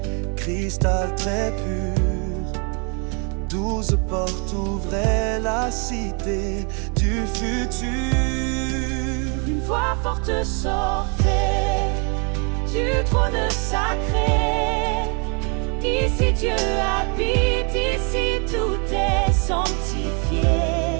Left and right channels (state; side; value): quieter; left; 36.3 dB